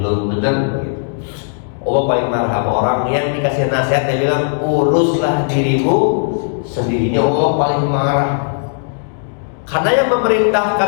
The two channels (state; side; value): silent; right; digital silence